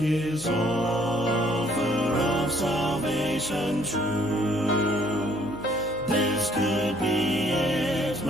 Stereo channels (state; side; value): noise; right; hum, 20 dB below the sound